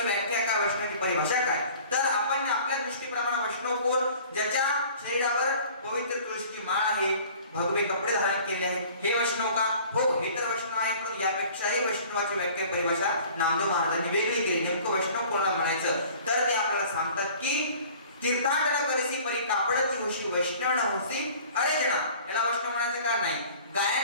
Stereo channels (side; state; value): both; inverted; correlation -0.48